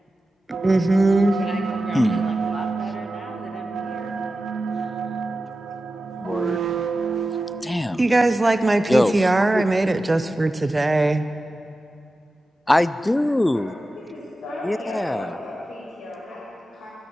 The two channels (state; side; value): normal; both; correlation 0.93